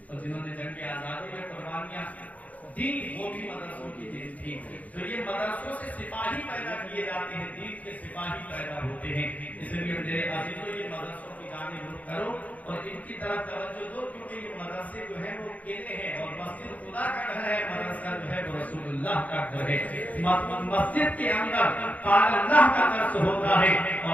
اور جنہوں نے جنگ آزادی میں قربانیاں دی، وہ بھی مدرسوں کی دین تھی۔ تو یہ مدرسوں سے سپاہی پیدا کیے جاتے ہیں، دین کے سپاہی پیدا ہوتے ہیں۔ اس لیے میرے عزیزوں، یہ مدرسوں کی جانب رخ کرو اور ان کی طرف توجہ دو، کیونکہ یہ مدرسے جو ہیں وہ کیلے ہیں، اور مسجد خدا کا گھر ہے، مدرسہ جو ہے وہ رسول اللہ کا گھر ہے۔ مسجد کے اندر قال اللہ کا درس ہوتا ہے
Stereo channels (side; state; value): right; late; 0.072 ms